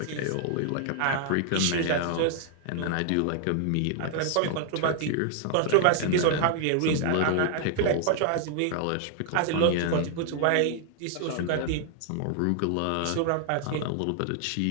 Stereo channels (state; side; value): different; both; correlation 0.00